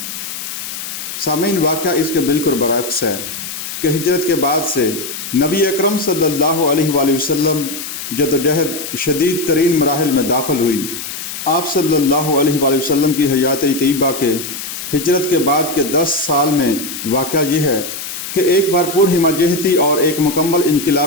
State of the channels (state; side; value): noise; left; hiss, 8 dB below the sound